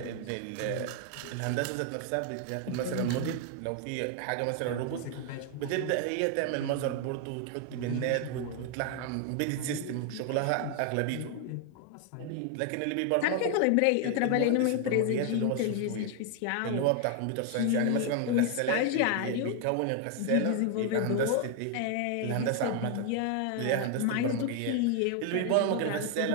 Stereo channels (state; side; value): different; both; correlation 0.00